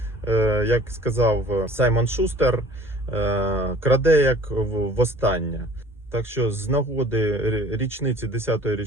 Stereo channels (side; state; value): both; normal; correlation 0.50